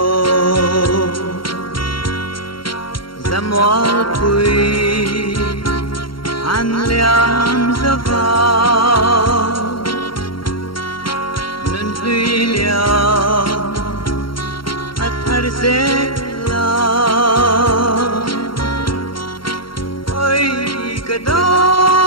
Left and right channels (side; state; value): right; late; 0.73 ms